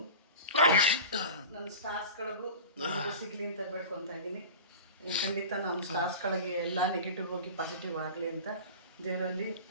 ನನ್ನ ಸ್ಟಾರ್ಸ್ಗಳಿಗೂ ಸಿಗಲಿ ಅಂತ ಬೇಡ್ಕೊತಾ ಇದ್ದೀನಿ. ಖಂಡಿತ ನಮ್ಮ ಸ್ಟಾರ್ಸ್ಗಳಿಗೆ ಎಲ್ಲ ನೆಗೆಟಿವ್ ಹೋಗಿ ಪಾಸಿಟಿವ್ ಆಗಲಿ ಅಂತ ದೇವರಲ್ಲಿ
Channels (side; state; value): both; inverted; correlation -0.34